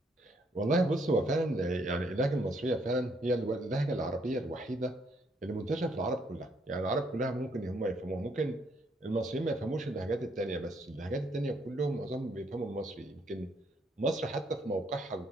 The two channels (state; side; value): normal; both; correlation 0.70